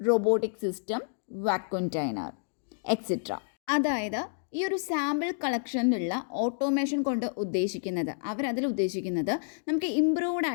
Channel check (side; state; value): right; silent; digital silence